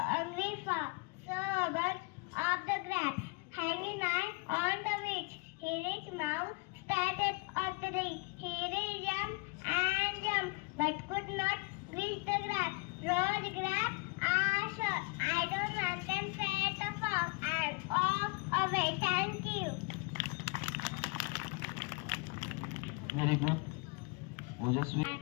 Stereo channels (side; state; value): right; quieter; 29.3 dB